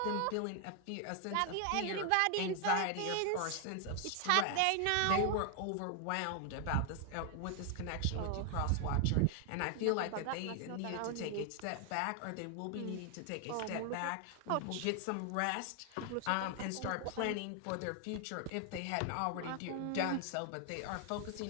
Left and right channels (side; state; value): both; different; correlation 0.00